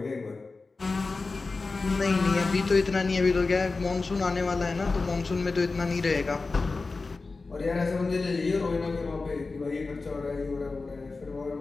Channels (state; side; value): quieter; right; 3.9 dB